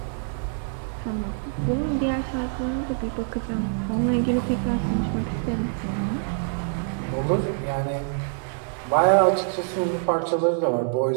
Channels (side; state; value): left; silent; digital silence